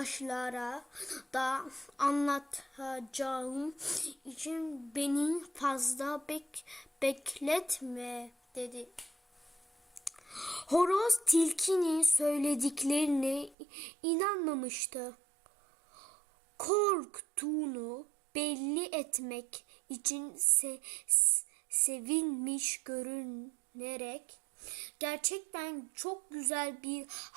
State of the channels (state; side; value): drops out; left; at 13.6 s